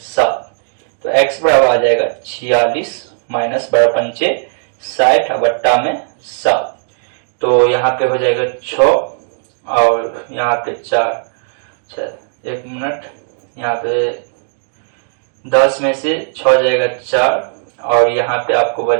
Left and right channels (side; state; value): left; silent; digital silence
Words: तो x बराबर आ जाएगा 46 माइनस 12 पंचे 60/7। तो यहाँ पे हो जाएगा 6 और यहाँ पे 4, 1 मिनट, यहाँ पे 10 में से 6 जाएगा 4 और यहाँ पे आपको